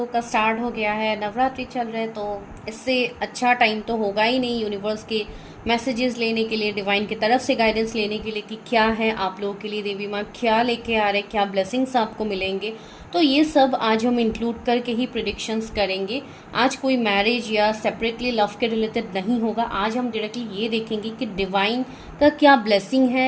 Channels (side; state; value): both; identical; correlation 1.00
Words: का स्टार्ट हो गया है, नवरात्रि चल रहे हैं, तो इससे अच्छा टाइम तो होगा ही नहीं यूनिवर्स के मैसेजेस लेने के लिए, डिवाइन की तरफ से गाइडेंस लेने के लिए कि क्या है आप लोगों के लिए, देवी माँ क्या लेके आ रहे, क्या ब्लेसिंग्स आपको मिलेंगे। तो ये सब आज हम इंक्लूड करके ही प्रिडिक्शंस करेंगे। आज कोई मैरिज या सेपरेटली लव के रिलेटेड नहीं होगा। आज हम डायरेक्टली ये देखेंगे कि डिवाइन का क्या ब्लेसिंग